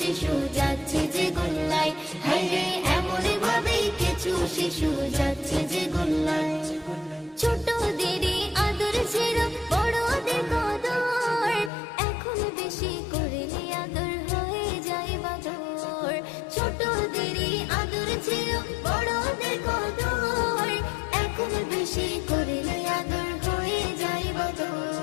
যাচ্ছে যে গোল্লায়, হায়রে এমনই ভাবে কিছু শিশু যাচ্ছে যে গোল্লায়। ছোটদেরই আদর ছিল বড়দের কদর, এখন বেশি করলে আদর হয়ে যায় বাদর। ছোটদেরই আদর ছিল বড়দের কদর, এখন বেশি করলে আদর হয়ে যায়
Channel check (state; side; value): drops out; right; at 11.7 s